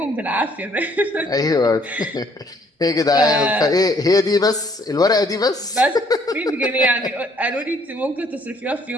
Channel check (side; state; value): both; normal; correlation 0.63